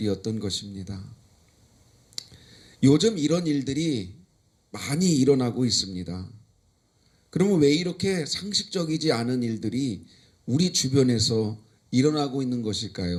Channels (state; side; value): identical; both; correlation 1.00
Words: 것입니다. 요즘 이런 일들이 많이 일어나고 있습니다. 그러면 왜 이렇게 상식적이지 않은 일들이 우리 주변에서 일어나고 있는